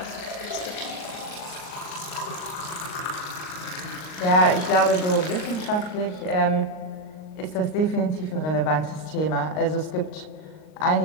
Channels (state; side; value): late; right; 38 ms